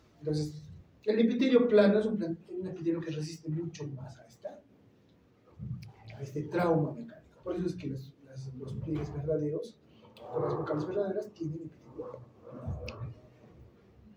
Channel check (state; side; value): identical; both; correlation 1.00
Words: Entonces, el epitelio plano es un epitelio que resiste mucho más a este trauma mecánico. Por eso es que los pliegues verdaderos, o las vocales verdaderas, tienen epitelio plano.